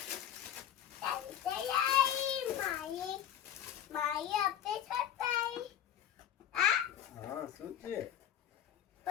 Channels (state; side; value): quieter; right; 10.4 dB